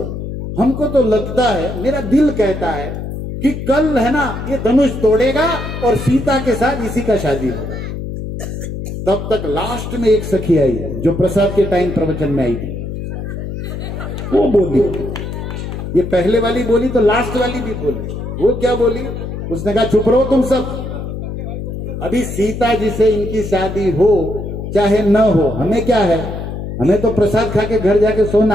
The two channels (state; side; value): noise; left; hum, 6 dB below the sound